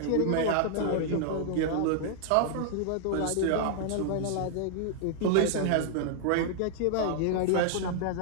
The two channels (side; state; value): both; different; correlation -0.01